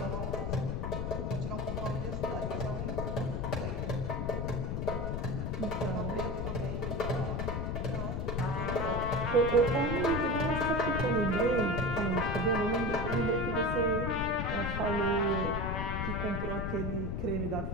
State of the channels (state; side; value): noise; left; rumble, 2 dB below the sound